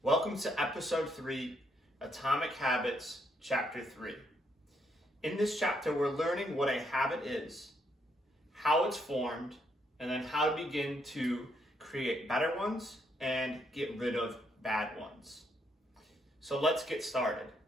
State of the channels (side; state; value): both; normal; correlation 0.74